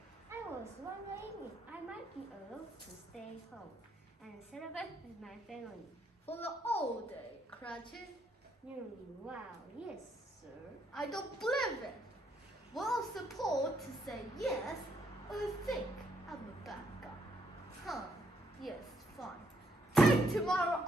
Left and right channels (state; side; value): normal; both; correlation 0.73